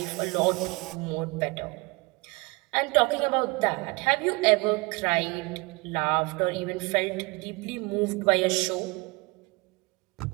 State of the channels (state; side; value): quieter; left; 26.1 dB